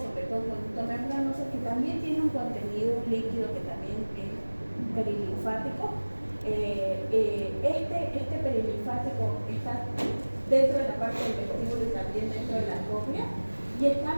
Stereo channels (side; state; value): both; inverted; correlation -1.00